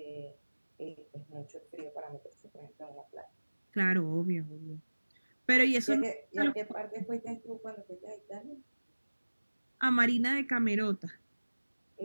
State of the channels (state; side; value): inverted; both; correlation -1.00